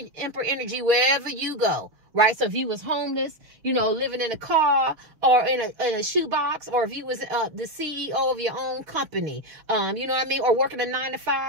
emperor energy wherever you go. Right? So if you was homeless, you know, living in a car or in a shoebox, or if you was the CEO of your own company, you know what I mean? Or working a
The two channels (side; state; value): left; late; 6.8 ms